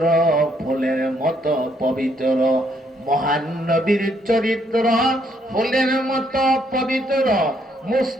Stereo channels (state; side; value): normal; both; correlation 0.71